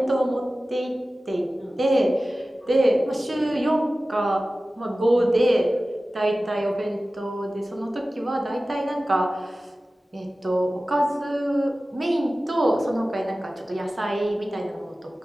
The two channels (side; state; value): both; normal; correlation 0.96